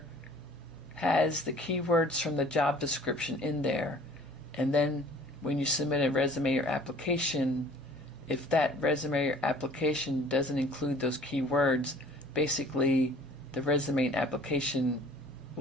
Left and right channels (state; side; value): normal; both; correlation 0.50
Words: has the keywords from the job description in there, and then when you submit a resume or application, if that resume or application doesn't include those keywords, basically the resume and application